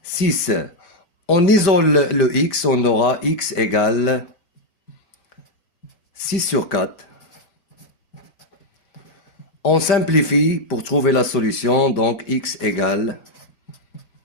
6. On isole le x, on aura x égale 6 sur 4. On simplifie pour trouver la solution, donc x égale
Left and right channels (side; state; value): right; late; 5.1 ms